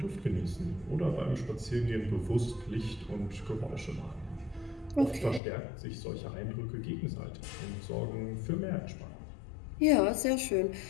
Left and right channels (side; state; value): right; drops out; at 5.4 s